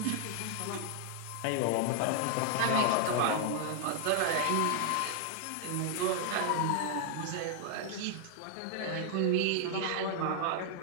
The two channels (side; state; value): both; different; correlation -0.01